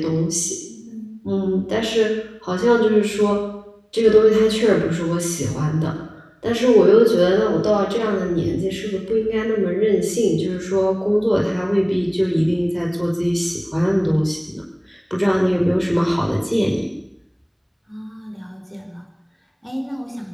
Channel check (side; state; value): both; identical; correlation 1.00